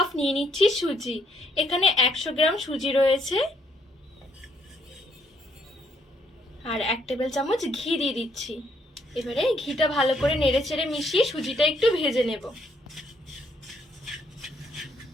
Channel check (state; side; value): normal; both; correlation 0.69